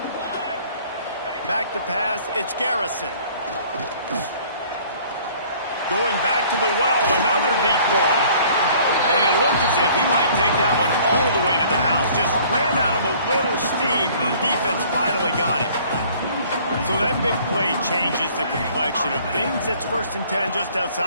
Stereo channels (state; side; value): inverted; both; correlation -0.54